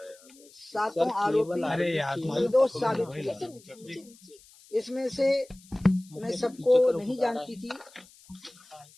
7 आरोपी निर्दोष साबित हुए हैं। इसमें से मैं सबको नहीं जानती थी,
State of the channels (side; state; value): left; noise; hiss, 25 dB below the sound